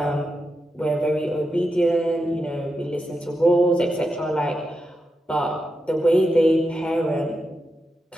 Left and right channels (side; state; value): both; normal; correlation 0.87